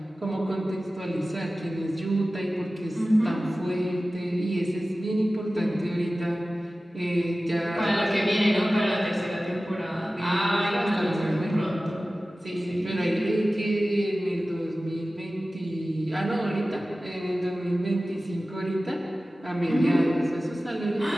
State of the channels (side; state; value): both; normal; correlation 0.96